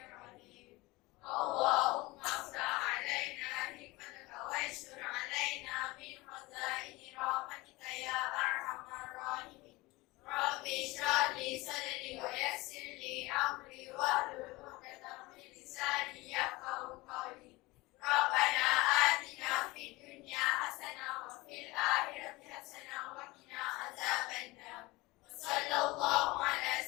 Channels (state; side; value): quieter; right; 21.7 dB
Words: Allahumma ftah alaina hikmataka wa yashkur alaina min khazaini rahmatika ya arhamar rahimin. Rabbi shrah li sadri wa yassir li amri wahlul 'uqdatam min lisani yafqahu qawli. Rabbana atina fid dunya hasanah wa fil akhirati hasanah wa qina adzabannar. Sallallahu ala